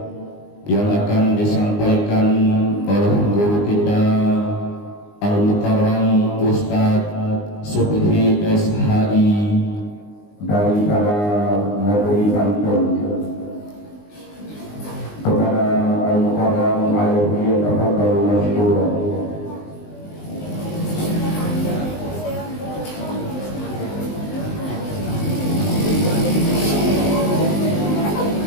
yang akan disampaikan oleh guru kita Al-Mukarram Ustadz Subhi SHI dari negeri Banten. Kepada Al-Mukarram alaihi tafadhalu masykuran.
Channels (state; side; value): late; right; 19 ms